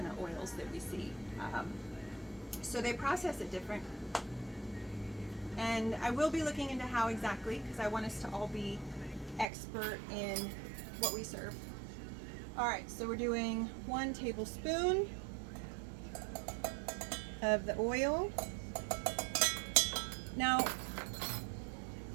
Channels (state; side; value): drops out; left; at 9.5 s